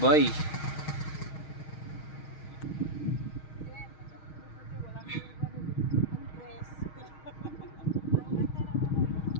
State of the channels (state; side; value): late; right; 6.4 ms